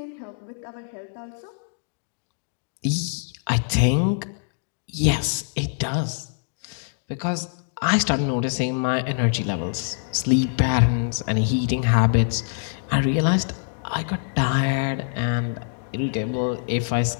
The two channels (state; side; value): silent; right; digital silence